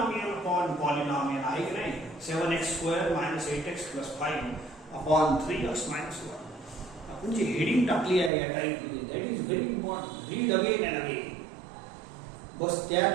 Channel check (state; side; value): drops out; left; at 8.3 s